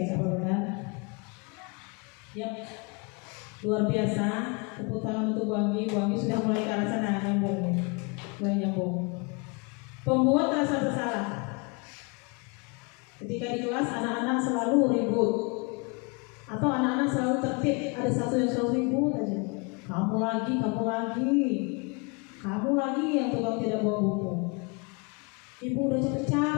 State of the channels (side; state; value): right; quieter; 31.3 dB